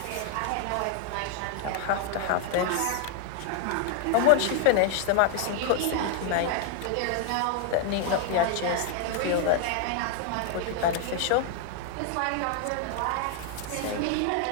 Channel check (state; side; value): different; both; correlation 0.00